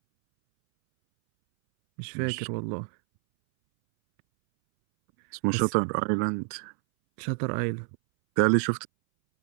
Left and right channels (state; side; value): silent; left; 60 dB below the other